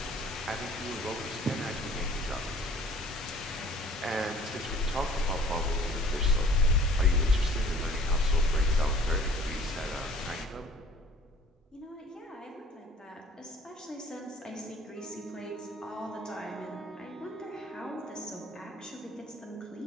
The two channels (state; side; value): normal; both; correlation 0.52